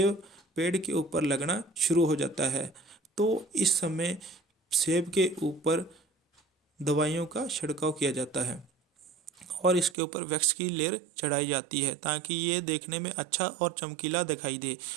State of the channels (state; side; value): drops out; left; at 10.0 s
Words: पेड़ के ऊपर लगना शुरू हो जाता है तो इस समय सेब के ऊपर दवाइयों का छिड़काव किया जाता है और इसके ऊपर वैक्स की लेयर चढ़ाई जाती है ताकि ये देखने में अच्छा और चमकीला दिखाई दे।